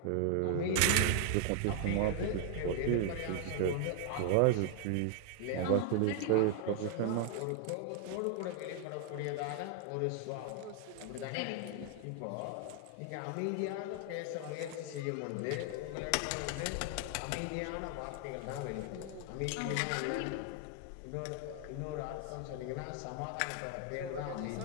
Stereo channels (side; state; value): both; different; correlation 0.00